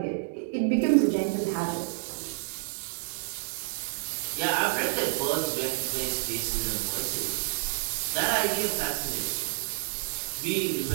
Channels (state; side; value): silent; left; 59 dB below the other